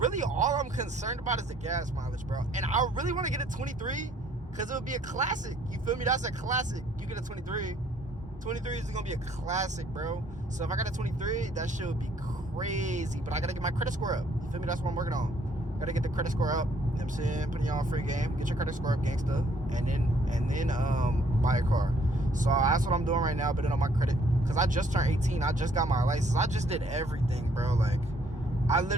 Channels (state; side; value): normal; both; correlation 0.64